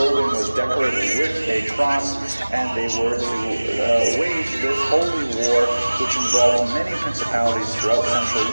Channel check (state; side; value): inverted; both; correlation -1.00